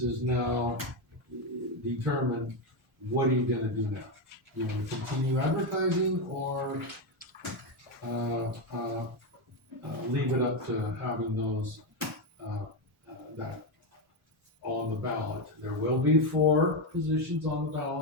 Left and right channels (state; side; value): normal; both; correlation 0.08